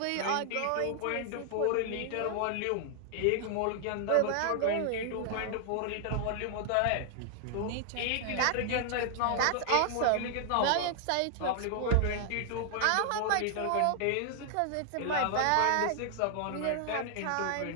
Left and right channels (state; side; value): different; both; correlation 0.00